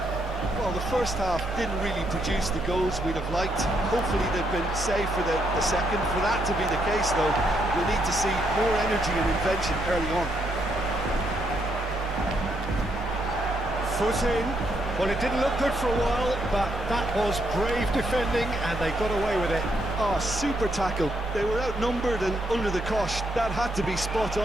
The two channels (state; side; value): normal; both; correlation 0.76